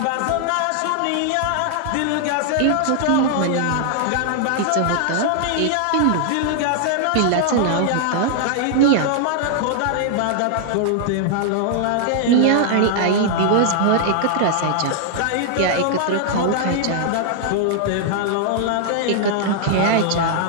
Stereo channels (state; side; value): different; both; correlation 0.00